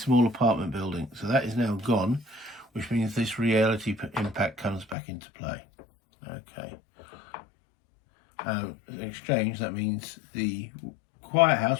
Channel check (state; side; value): drops out; right; at 5.0 s